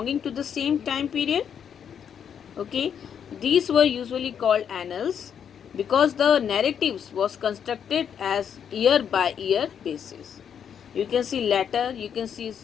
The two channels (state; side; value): quieter; right; 8.1 dB